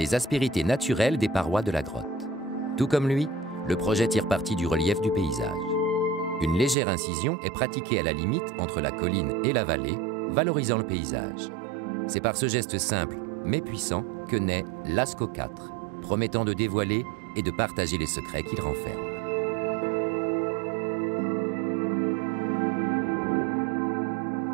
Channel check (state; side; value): drops out; left; at 6.8 s